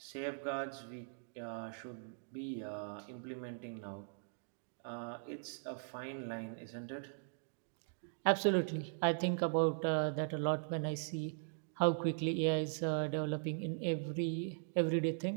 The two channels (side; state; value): left; silent; digital silence